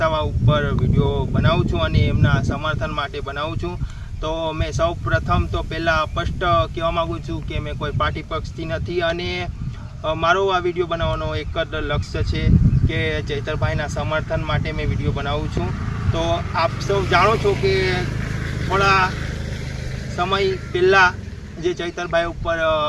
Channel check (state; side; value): identical; both; correlation 1.00